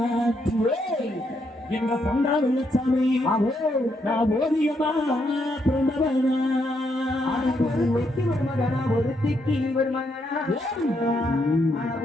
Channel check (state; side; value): normal; both; correlation 0.77